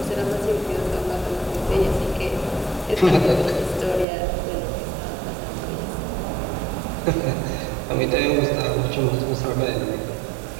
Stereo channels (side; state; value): left; drops out; at 4.0 s